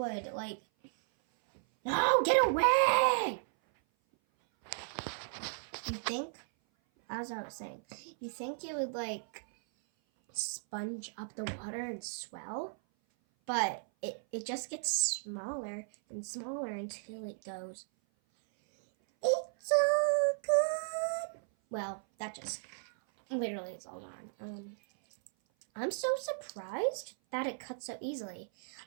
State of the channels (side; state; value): left; silent; 54 dB below the other